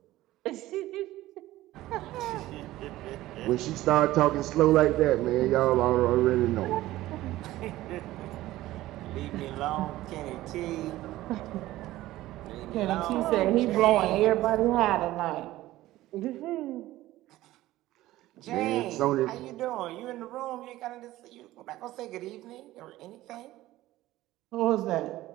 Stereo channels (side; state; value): left; quieter; 16.1 dB